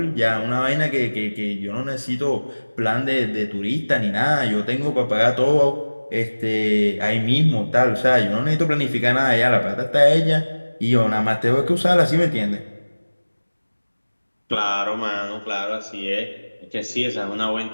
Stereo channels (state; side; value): inverted; both; correlation -1.00